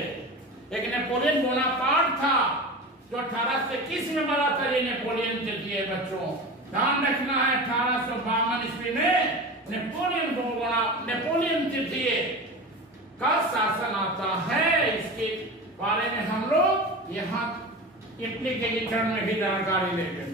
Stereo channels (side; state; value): both; normal; correlation 0.30